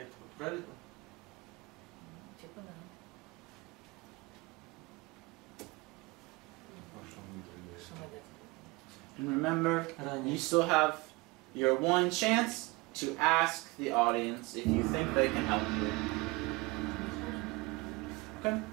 правильно? Типа да. And remember, Ранее. you still have your one chance to ask the audience if you think they can help you. Okay?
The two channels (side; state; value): left; quieter; 23.9 dB